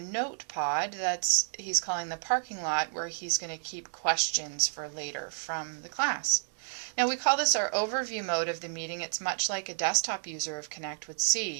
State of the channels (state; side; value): silent; left; digital silence